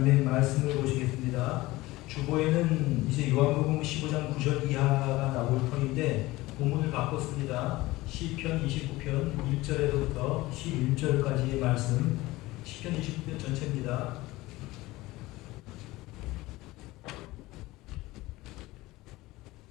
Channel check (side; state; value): right; quieter; 19.3 dB